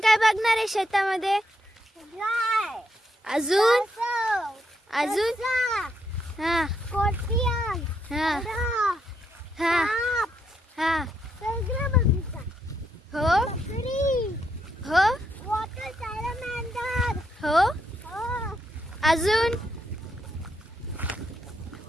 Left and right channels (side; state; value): both; normal; correlation 0.78